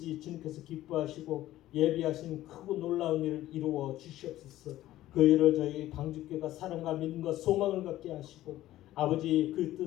주님께서 기뻐하시고 예비하신 크고 놀라운 일을 이루어 주시옵소서. 그 일을 저희 방주교가 사랑과 믿음과 소망을 갖게 하시고 아버지 그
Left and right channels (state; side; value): quieter; right; 14.7 dB